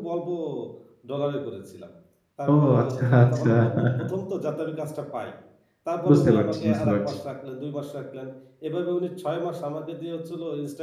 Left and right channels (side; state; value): both; identical; correlation 1.00